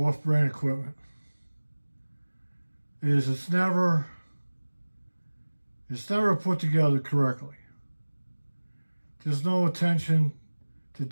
equipment is it's never put together correctly. There's no attention to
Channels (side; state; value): both; inverted; correlation -1.00